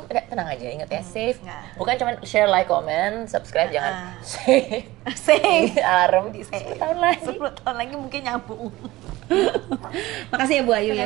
tenang aja, ingat ya, save. Bukan cuma share, like, comment, subscribe, jangan save alarm di 10 tahun lagi. 10 tahun lagi mungkin nyambung. Makasih ya Bu Ayu ya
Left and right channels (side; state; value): left; quieter; 18.3 dB